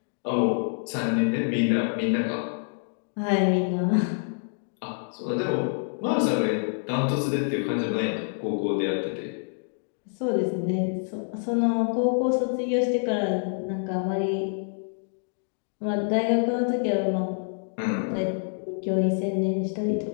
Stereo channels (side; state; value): right; silent; digital silence